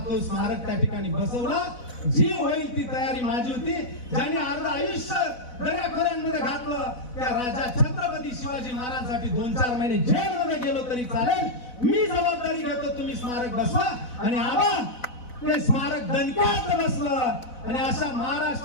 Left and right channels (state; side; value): late; right; 4.0 ms